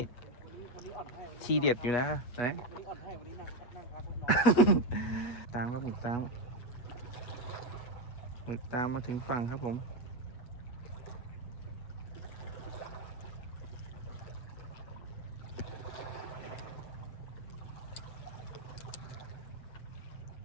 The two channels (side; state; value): right; late; 8.3 ms